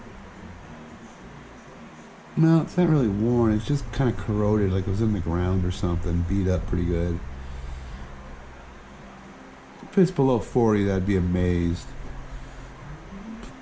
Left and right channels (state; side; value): identical; both; correlation 1.00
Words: No, it's not really worn. It's just kind of corroded, like it was in the ground or something. Beat up pretty good. If it's below 40, I'd be amazed. But